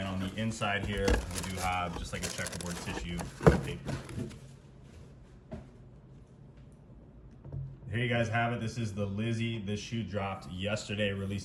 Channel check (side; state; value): both; identical; correlation 1.00